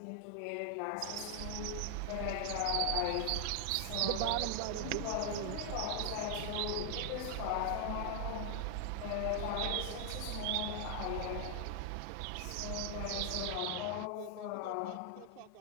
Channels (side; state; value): both; different; correlation 0.00